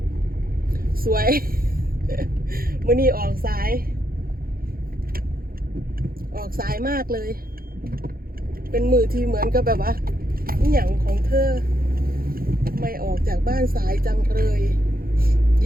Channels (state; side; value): late; left; 0.43 ms